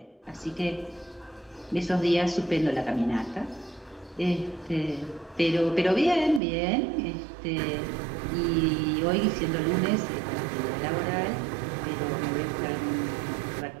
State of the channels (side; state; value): left; drops out; at 6.4 s